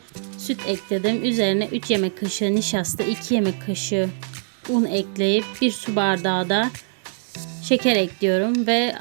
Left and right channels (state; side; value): silent; left; 64 dB below the other